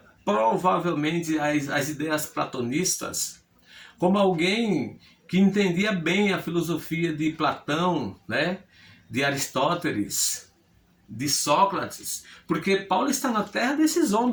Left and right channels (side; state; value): both; identical; correlation 1.00